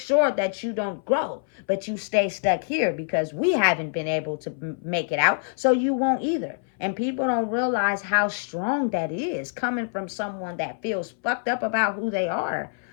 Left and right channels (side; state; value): right; silent; 59 dB below the other